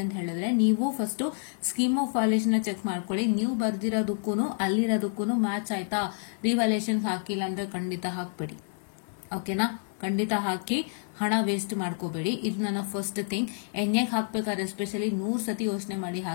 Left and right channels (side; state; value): right; silent; 59 dB below the other